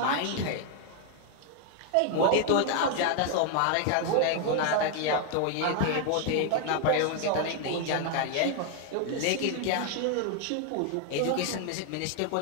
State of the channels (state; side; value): different; both; correlation 0.00